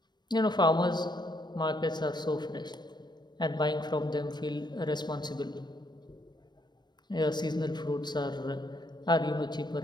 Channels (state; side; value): late; right; 0.21 ms